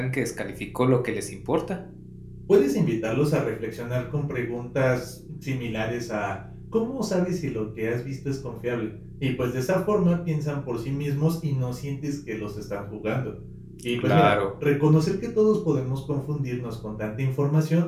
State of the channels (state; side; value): identical; both; correlation 1.00